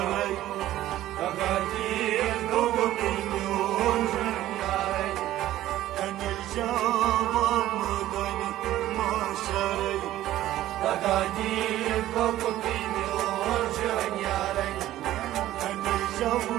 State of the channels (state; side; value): quieter; left; 14.1 dB